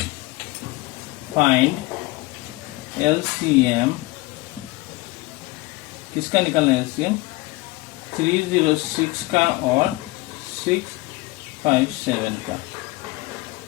फाइंड LCM, किसका निकलना है LCM? 306 का और 657 का।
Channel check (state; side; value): quieter; right; 21.4 dB